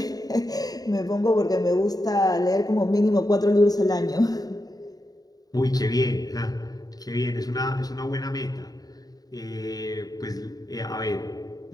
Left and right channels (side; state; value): right; late; 0.18 ms